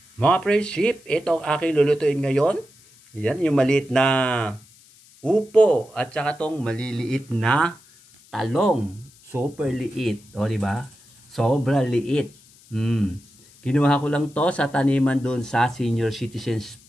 Mga friendship, ito ang aking lulutuin ngayon. Yan, yung maliit na upo at saka tong maliliit na talong. Super liit. O, diba? Sobra liit. Kinuha ko lang to sa taniman doon sa Senior Citizens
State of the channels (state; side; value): noise; left; hiss, 27 dB below the sound